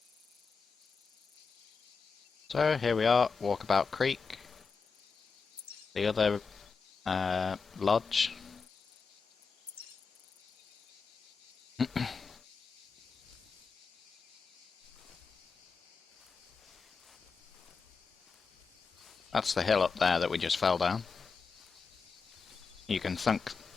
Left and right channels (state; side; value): quieter; right; 5.1 dB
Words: So here we are, Walkabout Creek. The other lodge. That's the hill up there that we just fell down. You can thank